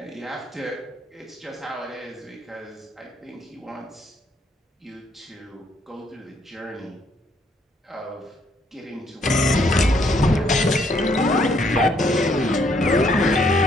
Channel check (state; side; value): normal; both; correlation 0.69